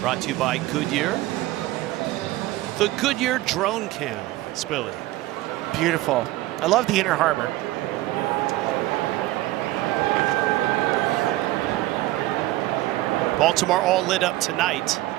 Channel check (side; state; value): left; quieter; 17.2 dB